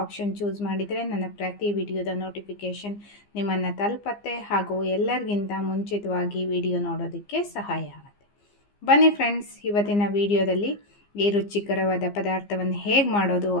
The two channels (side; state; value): right; late; 15 ms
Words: ಆಪ್ಷನ್ ಚೂಸ್ ಮಾಡಿದರೆ ನನ್ನ ಪ್ರತಿ ವಿಡಿಯೋದ ನೋಟಿಫಿಕೇಷನ್ ನಿಮ್ಮನ್ನು ತಲುಪತ್ತೆ ಹಾಗೂ ಎಲ್ಲರಿಗಿಂತ ಮುಂಚಿತವಾಗಿ ವಿಡಿಯೋ ನೋಡೋದಕ್ಕೆ ಸಹಾಯ ಆಗುತ್ತೆ. ಬನ್ನಿ ಫ್ರೆಂಡ್ಸ್, ಇವತ್ತಿನ ವಿಡಿಯೋದಲ್ಲಿ ಈ ರುಚಿಕರವಾದ ಪದಾರ್ಥವನ್ನು ಹೇಗೆ ಮಾಡೋದು